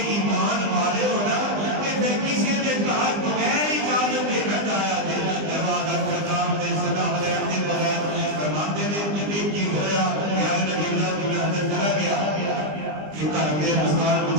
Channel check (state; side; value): late; left; 20 ms